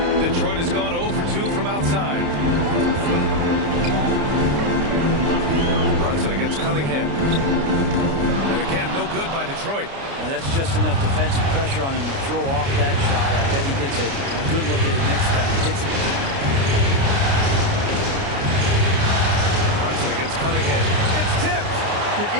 Detroit has gone 0 for 2 from outside. Brunson against Cunningham. And again, no good by Detroit. Now that's just enough defensive pressure on him to throw off that shot. I bet he gets a good look at it next time he hits it. Brunson against Cunningham. It's tipped. Yeah,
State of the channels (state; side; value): late; left; 29 ms